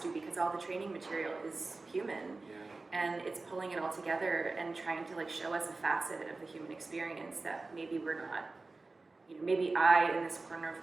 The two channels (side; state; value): left; quieter; 3.5 dB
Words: because all the training material is human. And it's pulling it all together and trying to show us a facet of the human experience that maybe we're not, maybe I, in this corner of